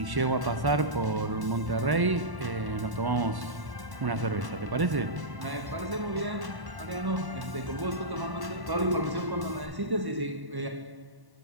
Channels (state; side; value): late; left; 1.1 ms